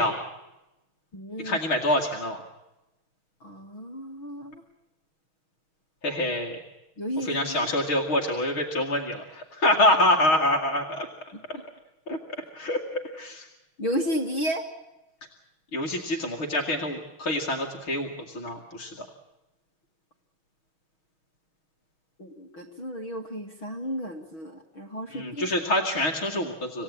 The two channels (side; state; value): right; late; 6.3 ms